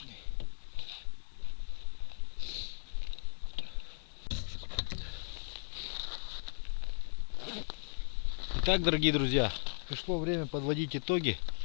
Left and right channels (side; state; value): right; silent; digital silence